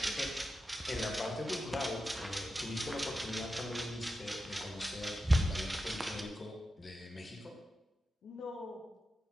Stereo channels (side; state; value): both; normal; correlation 0.90